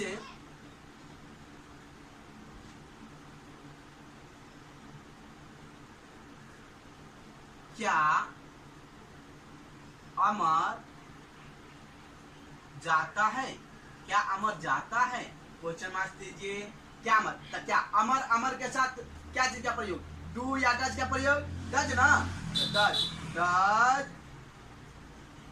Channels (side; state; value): both; identical; correlation 1.00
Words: क्या अमर जाता है, क्या अमर जाता है, क्वेश्चन मार्क दीजिए, क्या अमर, तो क्या अमर, अमर के साथ क्या चीज का प्रयोग, डू या डज का प्रयोग, डज ना, does, does